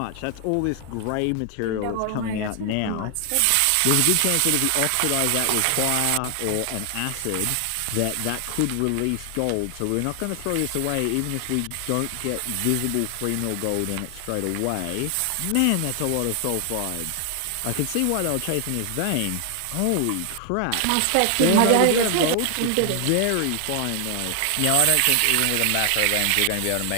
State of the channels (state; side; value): different; both; correlation 0.00